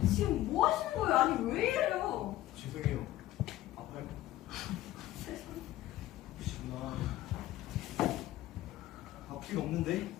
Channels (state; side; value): quieter; right; 15.0 dB